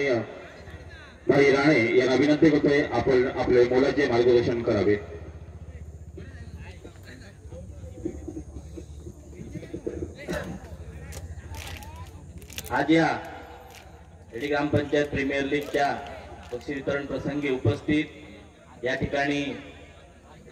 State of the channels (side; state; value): both; identical; correlation 1.00